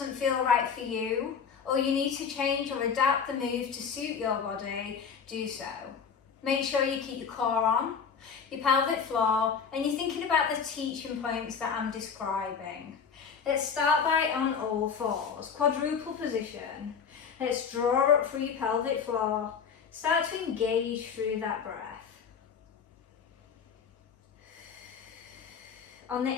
feel right for you, or you need to change or adapt the move to suit your body, do so. Make sure you keep your core on, your pelvic floor, and you're thinking about the teaching points that I'm describing. Let's start by on all fours, quadruple position. Let's draw up through your pelvic floor. Start to engage through that breath. On the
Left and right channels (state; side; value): quieter; right; 6.5 dB